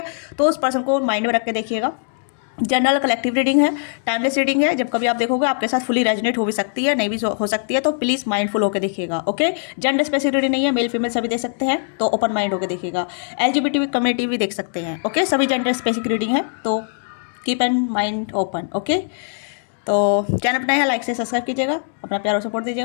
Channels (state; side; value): silent; right; digital silence